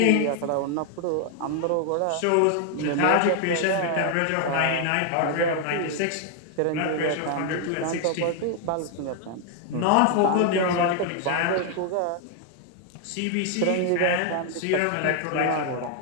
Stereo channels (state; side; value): different; both; correlation 0.00